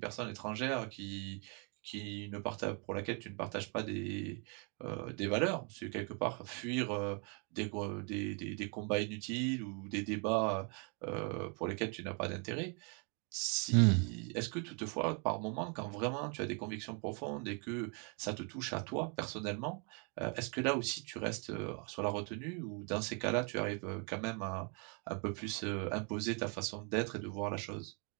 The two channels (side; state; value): left; quieter; 36.7 dB